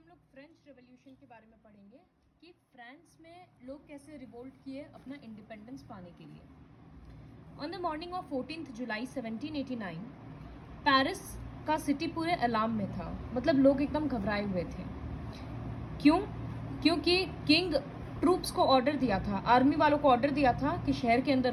हम लोग French revolution के बारे में पढ़ेंगे कि फ्रांस में लोग कैसे रिवोल्ट किए अपना इंडिपेंडेंस पाने के लिए। On the morning of 14 July 1789 Paris का सिटी पूरे अलार्म में था, मतलब लोग एकदम घबराए हुए थे। क्यों? क्योंकि किंग ट्रूप्स को ऑर्डर दिया था, आर्मी वालों को ऑर्डर दिया था कि शहर के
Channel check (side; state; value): both; identical; correlation 1.00